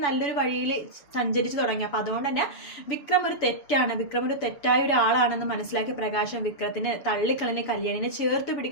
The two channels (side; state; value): right; late; 7.0 ms